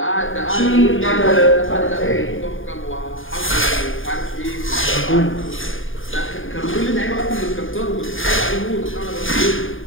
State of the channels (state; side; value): late; right; 0.58 ms